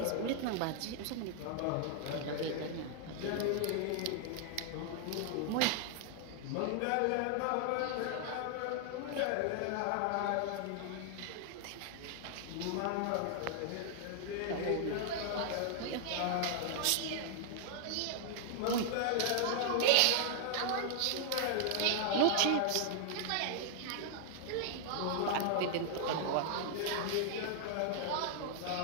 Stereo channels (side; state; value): both; different; correlation -0.01